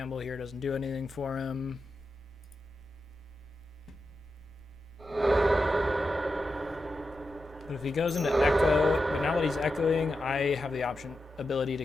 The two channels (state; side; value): normal; both; correlation 0.89